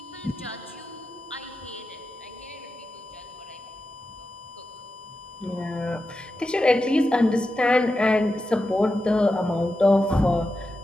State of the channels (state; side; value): normal; both; correlation 0.90